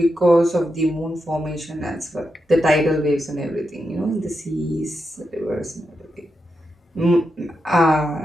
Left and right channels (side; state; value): both; normal; correlation 0.86